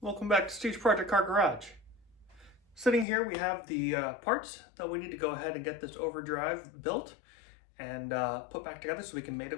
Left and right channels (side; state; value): right; drops out; at 3.1 s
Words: Welcome back to Steve's Project Car Garage. Sitting here we have the parts that we need to go ahead and get this Overdrive built and put back together so we can mate